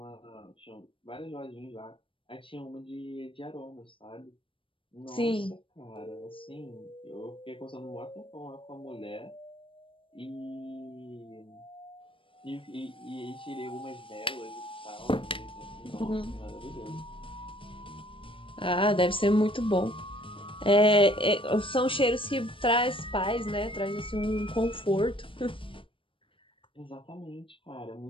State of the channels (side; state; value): right; late; 0.25 ms